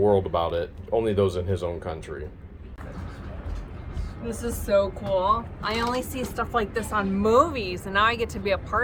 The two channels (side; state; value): both; identical; correlation 1.00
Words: world about it. Only those in his own country. This is so cool. I only see stuff like this on movies, and now I get to be a